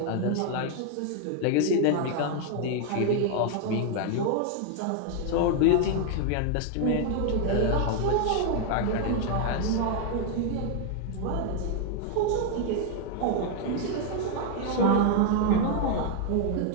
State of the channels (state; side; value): different; both; correlation 0.00